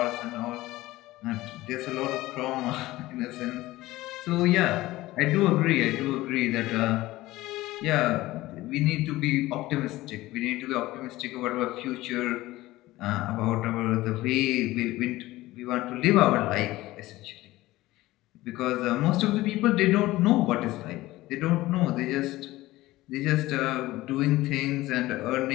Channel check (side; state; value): right; quieter; 17.7 dB